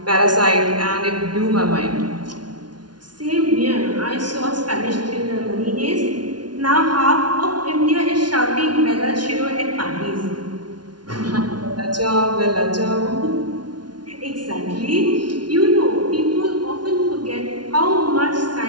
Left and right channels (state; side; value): late; left; 0.70 ms